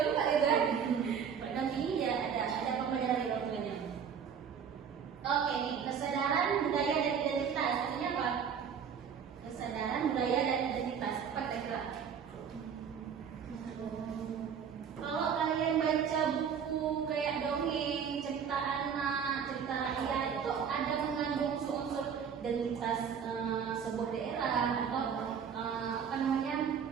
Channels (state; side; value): quieter; left; 7.3 dB